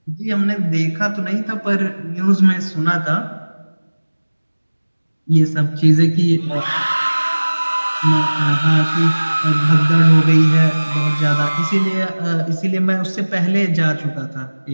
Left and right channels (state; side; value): inverted; both; correlation -1.00